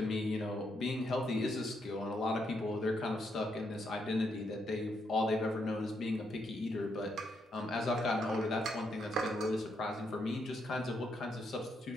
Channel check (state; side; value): normal; both; correlation 0.77